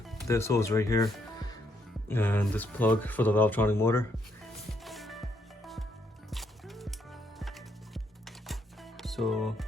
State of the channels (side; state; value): both; normal; correlation 0.74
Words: this hose right here, and this plug for the Valvetronic motor. So